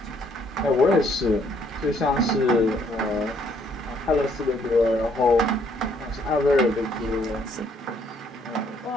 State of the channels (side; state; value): both; normal; correlation 0.67